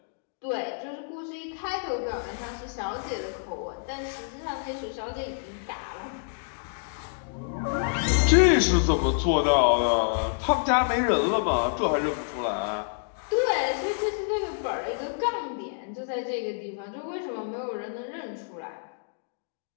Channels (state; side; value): silent; right; digital silence